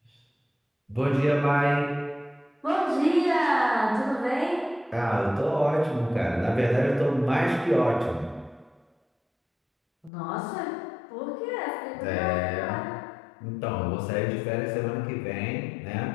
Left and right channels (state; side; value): drops out; right; at 10.1 s